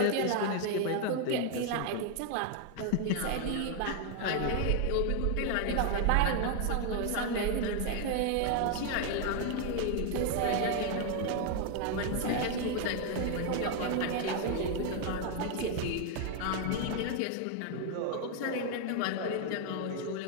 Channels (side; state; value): both; different; correlation 0.01